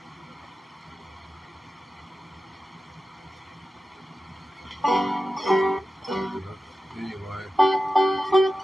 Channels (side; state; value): both; normal; correlation 0.93